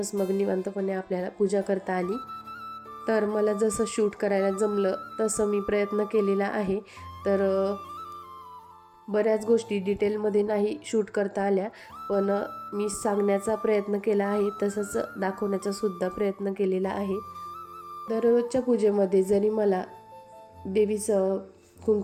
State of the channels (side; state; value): both; identical; correlation 1.00